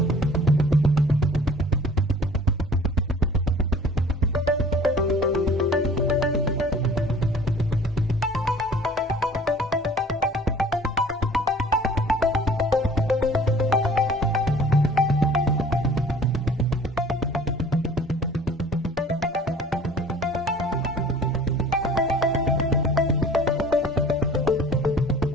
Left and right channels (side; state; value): both; normal; correlation 0.49